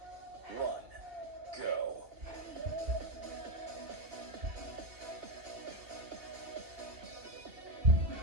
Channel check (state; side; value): late; left; 2.8 ms